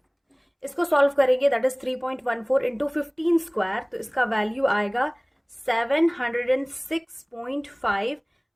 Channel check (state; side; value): identical; both; correlation 1.00